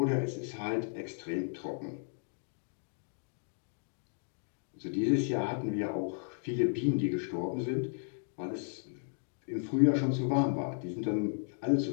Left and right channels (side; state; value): right; silent; digital silence